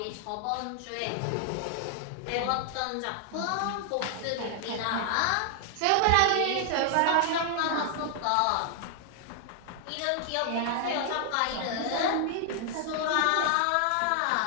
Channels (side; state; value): both; different; correlation 0.00